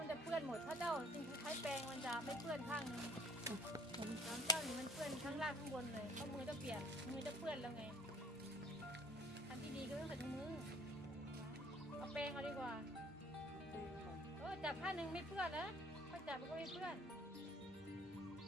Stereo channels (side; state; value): both; normal; correlation 0.55